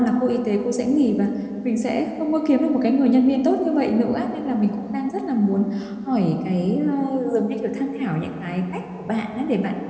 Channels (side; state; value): both; identical; correlation 1.00